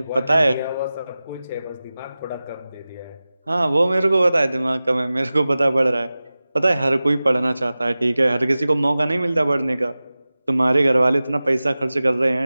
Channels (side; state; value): both; inverted; correlation -0.96